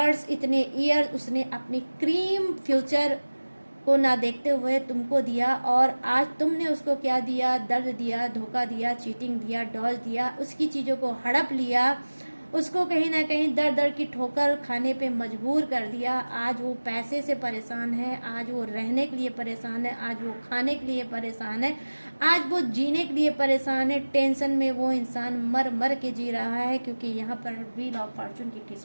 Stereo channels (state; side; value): inverted; both; correlation -1.00